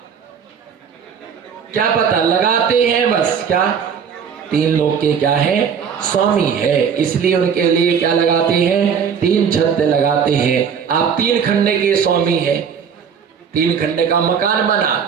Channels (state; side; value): quieter; left; 7.0 dB